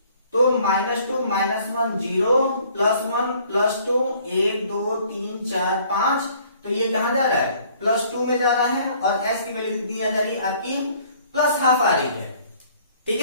तो -2 -1 0 +1 +2 1 2 3 4 5, तो ये कहां जा रहा है +2 में जा रहा है और s की वैल्यू कितनी आ जा रही है आपकी +½ आ रही है। ठीक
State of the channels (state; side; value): inverted; both; correlation -0.58